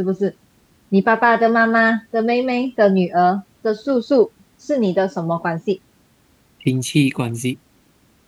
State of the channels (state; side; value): identical; both; correlation 1.00